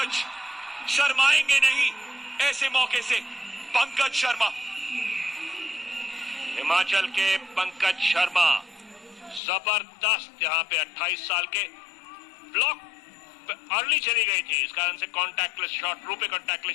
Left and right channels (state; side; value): drops out; right; at 9.4 s